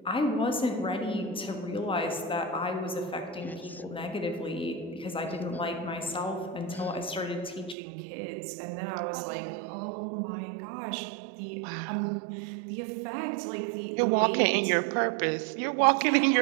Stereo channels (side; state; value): left; drops out; at 7.8 s